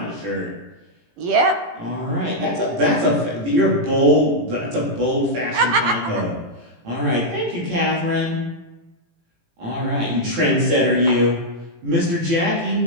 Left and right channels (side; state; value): left; late; 18 ms